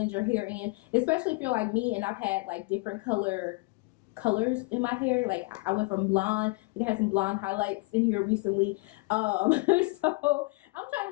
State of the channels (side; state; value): right; quieter; 27.5 dB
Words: your hair in, especially if you're like me and I've had like different color colors in my hair. Like I went from blonde, like I had some blonde highlights in here recently, so I'm trying